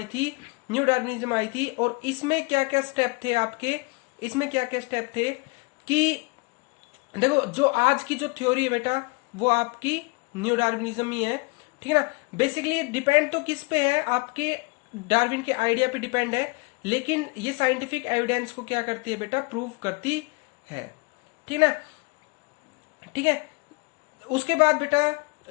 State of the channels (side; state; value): right; quieter; 29.4 dB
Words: थी, न्यू डार्विनिज्म आई थी। और इसमें क्या क्या स्टेप थे आपके, इसमें क्या क्या स्टेप थे कि देखो जो आज की जो थ्योरी है बेटा वो आपकी न्यू डार्विनिज्म ही है, ठीक है ना। बेसिकली डिपेंड तो किस पे है, आपके डार्विन के आइडिया पे डिपेंड है, लेकिन ये साइंटिफिक एविडेंस को क्या करती है बेटा, प्रूव करती है, ठीक है ना, ठीक है। उसके बाद बेटा